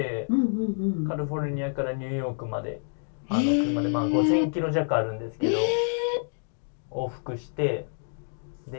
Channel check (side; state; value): right; silent; digital silence